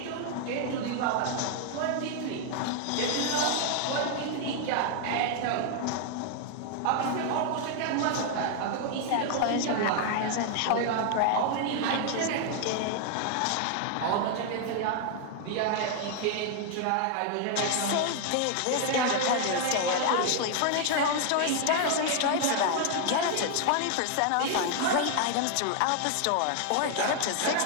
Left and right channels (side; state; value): both; different; correlation 0.00